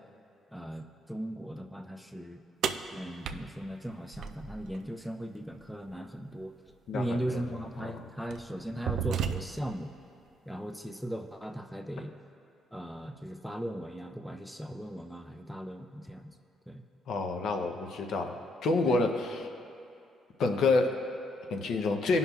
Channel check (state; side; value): normal; both; correlation 0.73